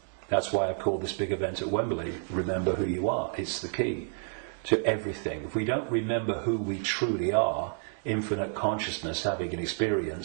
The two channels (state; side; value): silent; left; 58 dB below the other